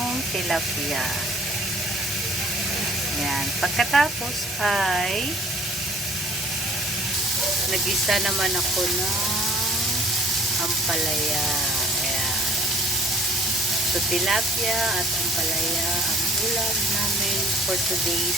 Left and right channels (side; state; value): both; normal; correlation 0.54